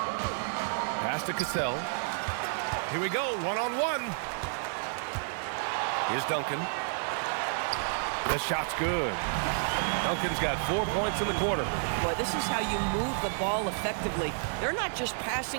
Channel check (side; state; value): left; silent; 57 dB below the other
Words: Pass to Cassell. Here we go, one-on-one. Here's Duncan. The shot's good. Duncan's got 4 points in the quarter. Boy, this is how you move the ball effectively. They're not just